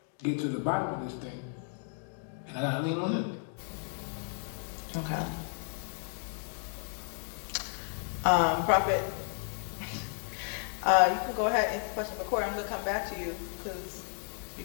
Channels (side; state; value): right; silent; 56 dB below the other